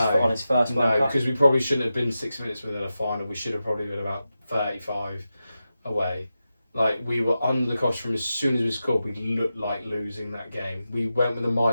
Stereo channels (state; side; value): inverted; both; correlation -0.91